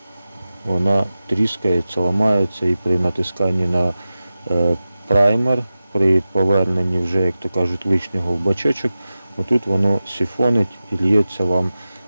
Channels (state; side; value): inverted; both; correlation -0.95